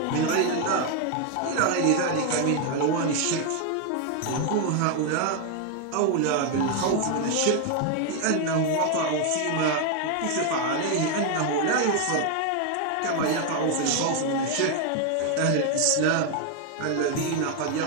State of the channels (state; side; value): different; both; correlation 0.01